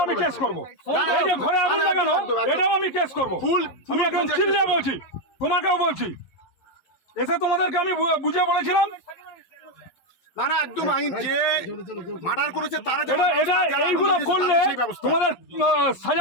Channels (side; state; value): right; late; 11 ms